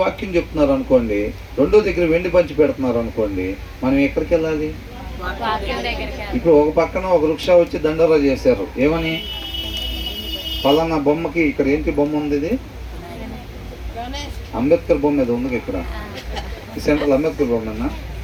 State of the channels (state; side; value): identical; both; correlation 1.00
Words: వాక్యం చెప్తున్నారు అనుకోండి, రెండో దగ్గర వెండి పంచి పెడుతున్నారు అనుకోండి, మనం ఎక్కడికి వెళ్ళాలి? ఇప్పుడు ఒక పక్కన ఒక వృక్ష వచ్చి దండోరా చేశారు. ఏమని? పలానా బొమ్మకి ఇక్కడ ఏంటి బొమ్మ ఉంది? ఇది అంబేద్కర్ బొమ్మ ఏదో ఉంది ఇక్కడ, ఈ సెంట్రల్ అంబేద్కర్ బొమ్మనా?